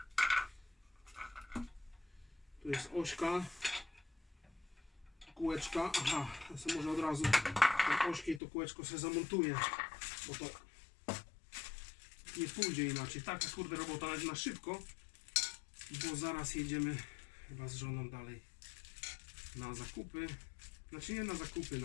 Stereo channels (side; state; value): right; drops out; at 8.4 s